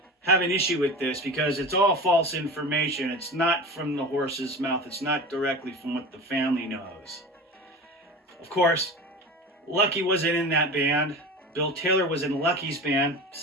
have an issue with this because it's all false information. It's not from the horse's mouth. It's not directly from what the family knows. Of course, Lucky wasn't in that band. Bill Taylor was in Lucky's band.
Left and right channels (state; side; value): normal; both; correlation 0.31